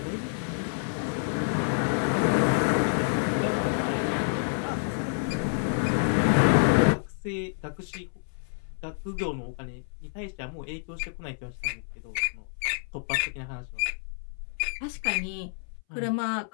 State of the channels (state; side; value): silent; right; 59 dB below the other